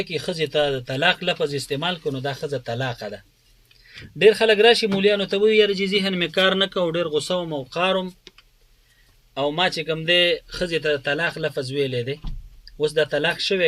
کې ښځې ته د طلاق لفظ استعمال کړو، نو دا ښځه طلاقه ده. ډېر خلک راشي مولیانو ته وایي یاره چې ذهن مې کار نه کوو، ډېر غوسه وم او قارم او ما چې کوم دی ښځې ته د طلاق لفظ ویلی دی. اوس دا طلاق شوی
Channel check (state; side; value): identical; both; correlation 1.00